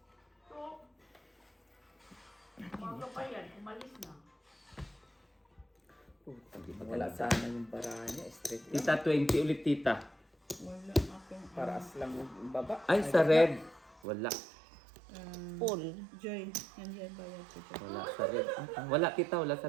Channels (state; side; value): drops out; left; at 14.0 s